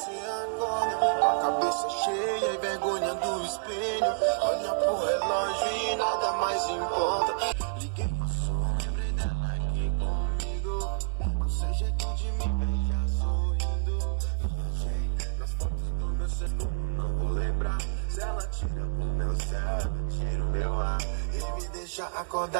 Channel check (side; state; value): left; silent; 59 dB below the other